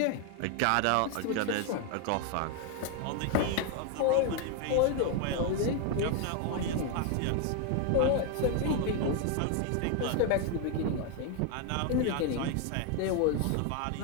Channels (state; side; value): different; both; correlation 0.01